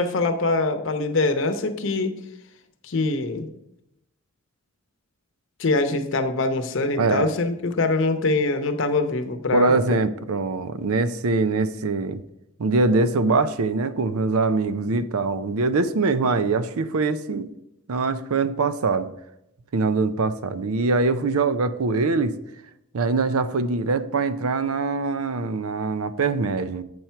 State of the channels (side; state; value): both; normal; correlation -0.03